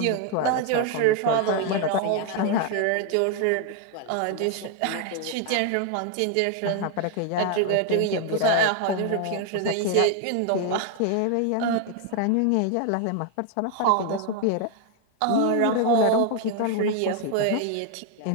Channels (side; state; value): both; different; correlation 0.00